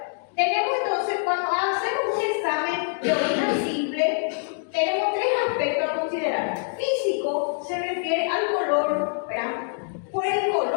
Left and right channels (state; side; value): silent; right; 62 dB below the other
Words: tenemos entonces, cuando hacemos un examen de orina simple, tenemos tres aspectos a considerar. Físico se refiere al color, ¿verdad? Por el